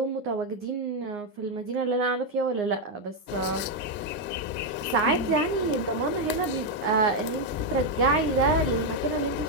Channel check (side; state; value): both; normal; correlation 0.02